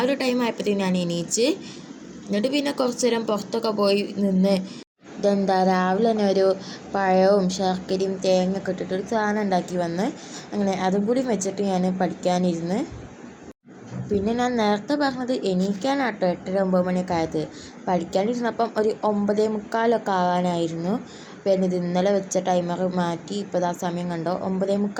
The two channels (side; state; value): both; identical; correlation 1.00